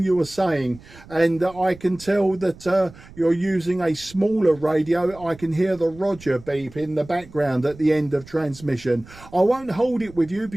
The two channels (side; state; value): right; noise; rumble, 21 dB below the sound